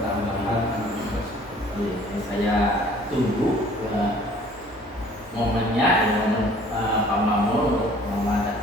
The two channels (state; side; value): normal; both; correlation 0.54